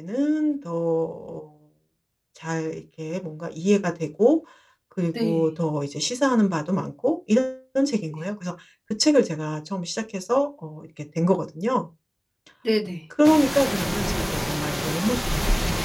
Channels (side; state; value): both; identical; correlation 1.00